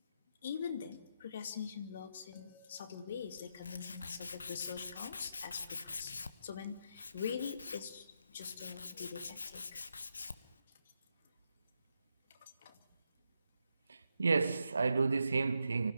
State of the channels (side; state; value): both; inverted; correlation -0.84